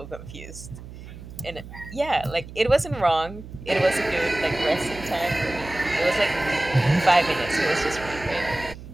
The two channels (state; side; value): noise; right; hum, 14 dB below the sound